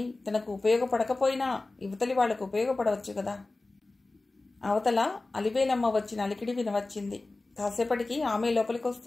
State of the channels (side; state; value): right; quieter; 3.2 dB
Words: తనకు ఉపయోగపడకపోయినా యువతలి వాళ్లకు ఉపయోగపడవచ్చు కదా. అవతల అలివేలమ్మ వచ్చిన అలికిడి వినవచ్చింది. కాసేపటికి ఆమె